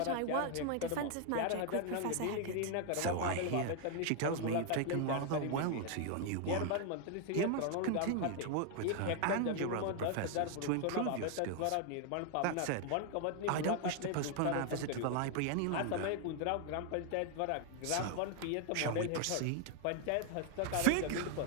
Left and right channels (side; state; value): both; different; correlation 0.00